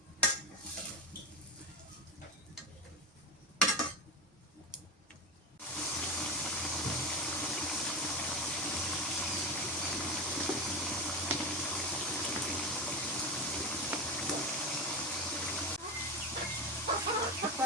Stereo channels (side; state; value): both; normal; correlation 0.20